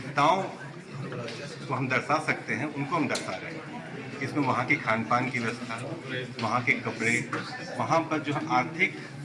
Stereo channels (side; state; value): both; identical; correlation 1.00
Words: को हम दर्शा सकते हैं उनको हम दर्शा रहे हैं। इसमें वहाँ की खान पान की व्यवस्था, वहाँ के कपड़े, वहाँ पर जो आर्थिक